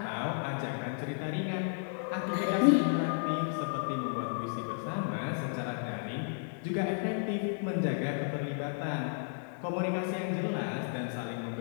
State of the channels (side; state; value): right; silent; digital silence